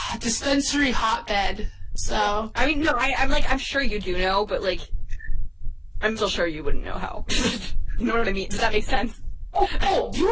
dispensary hotbed, so. I mean, no, I'm sure you do know, but like, I'm still sure you wouldn't know how. You know what I mean? Does that make sense? Oh, you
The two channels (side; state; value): both; identical; correlation 1.00